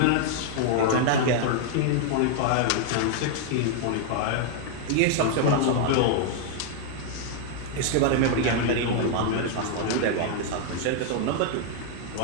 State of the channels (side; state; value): both; different; correlation 0.00